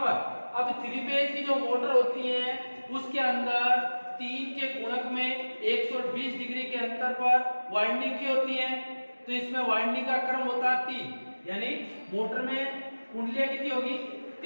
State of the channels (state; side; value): inverted; both; correlation -1.00